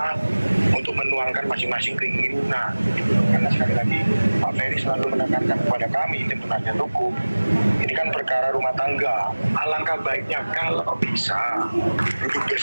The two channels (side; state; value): both; inverted; correlation -1.00